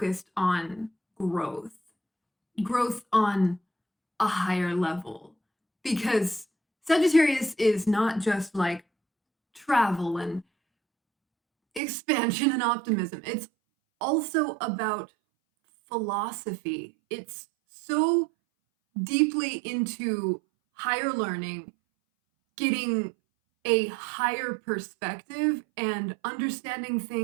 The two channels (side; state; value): left; drops out; at 11.8 s